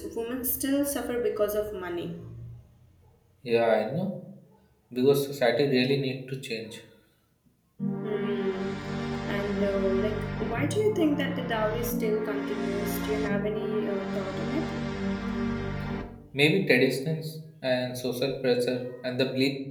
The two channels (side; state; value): both; identical; correlation 1.00